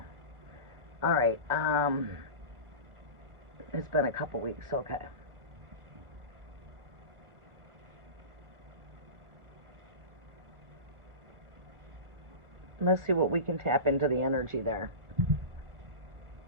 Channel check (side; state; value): left; late; 1.3 ms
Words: All right. It's been a couple weeks. Okay. Let's see what we can tap into the energy there.